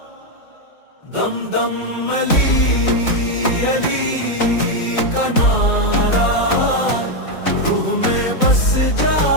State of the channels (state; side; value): late; right; 4.0 ms